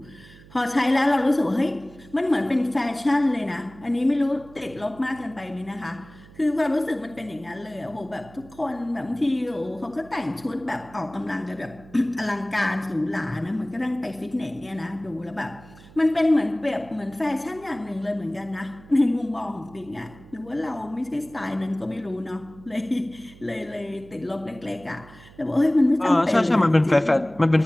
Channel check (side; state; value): right; noise; hum, 21 dB below the sound